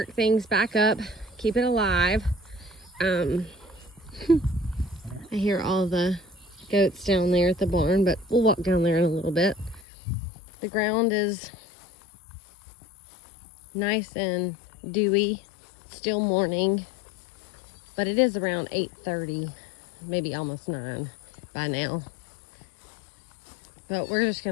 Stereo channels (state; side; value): drops out; right; at 9.9 s